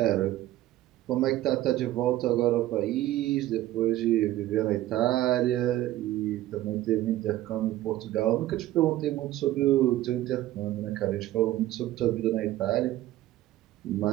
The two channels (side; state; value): left; quieter; 14.9 dB